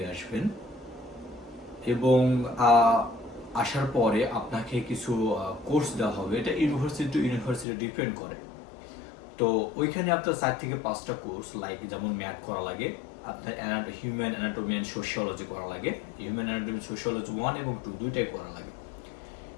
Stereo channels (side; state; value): right; drops out; at 7.7 s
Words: আসবেন এবং আসার পরে আপনাকে কিছু কোর্স দেওয়া হবে, এটা ইউনিভার্সিটি টু ইউনিভার্সিটি ডিপেন্ড করে। তো ওইখানে আপনার 4 থেকে 5টা কোর্স, লাইক যেমন ম্যাথ করা লাগে, আপনার হিউম্যান অ্যানাটমি অ্যান্ড সোশিওলজি করা লাগে, হিউম্যান অ্যানাটমি সোশিওলজি 1 এবং 2 দুইটাই করা লাগে,